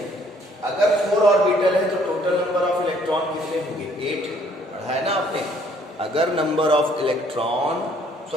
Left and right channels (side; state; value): both; normal; correlation 0.62